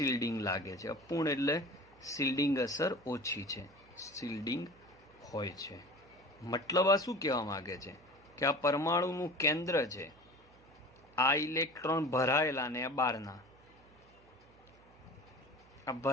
લાગે છે. અપૂર્ણ એટલે શિલ્ડિંગ અસર ઓછી છે, શિલ્ડિંગ હોય છે. મતલબ આ શું કહેવા માંગે છે કે આ પરમાણુનું કેન્દ્ર છે, આ ઇલેક્ટ્રોન ભરાયેલા ને આ બહારના, આ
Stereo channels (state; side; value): noise; right; hum, 27 dB below the sound